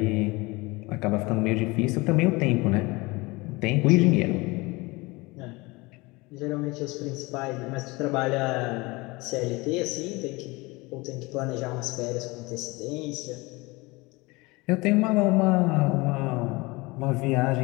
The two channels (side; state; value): right; quieter; 23.8 dB